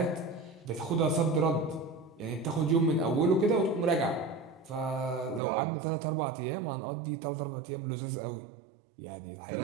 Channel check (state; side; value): drops out; left; at 5.4 s